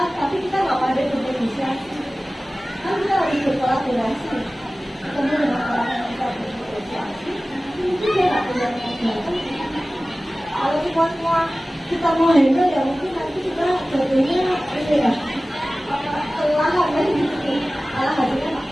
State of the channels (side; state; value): both; normal; correlation 0.97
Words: kita nggak pandai bernegosiasi, kan kita harus berkolaborasi. Ketemu dengan orang yang kita bernegosiasi, itu dia nggak punya modal. Kalau semua kita mau handle ya mungkin nanti kita jadinya ini ya kelelahan kan gitu, malah hasilnya nggak.